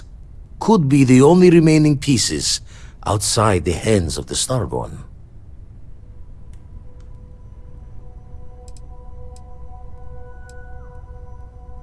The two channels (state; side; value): identical; both; correlation 1.00